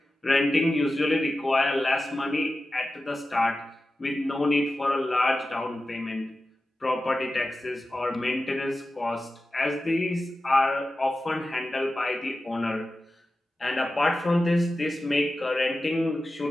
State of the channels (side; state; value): both; normal; correlation 0.93